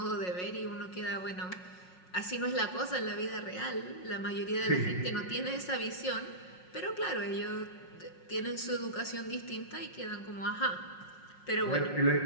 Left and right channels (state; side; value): late; right; 5.5 ms